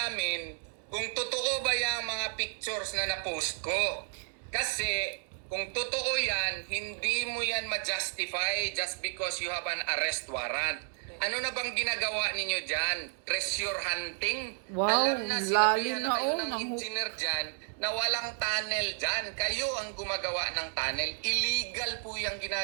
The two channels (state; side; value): silent; left; 56 dB below the other